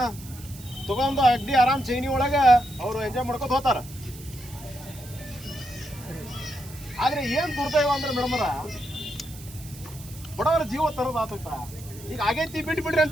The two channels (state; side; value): noise; right; hiss, 17 dB below the sound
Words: ತಗೊಂಡು ಅಗ್ದಿ ಆರಾಮ್ ಚೈನಿ ಒಳಗೆ ಅವರು ಎಂಜಾಯ್ ಮಾಡ್ಕೊತ ಹೋಗ್ತಾರ. ಆದ್ರೆ ಏನ್ ದುರ್ದೈವ ಅಂದ್ರೆ ಮೇಡಮರ, ಬಡವರ ಜೀವ ತರೋದು ಆತೈತ. ಈಗ ಆಗೈತಿ ಬಿಡ್ರಿ